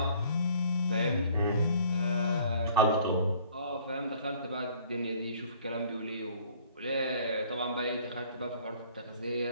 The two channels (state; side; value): inverted; both; correlation -0.55